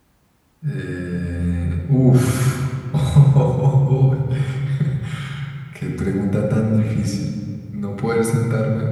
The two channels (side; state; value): both; identical; correlation 1.00